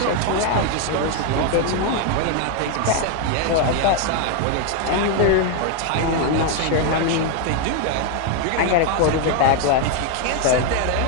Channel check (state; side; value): different; both; correlation 0.01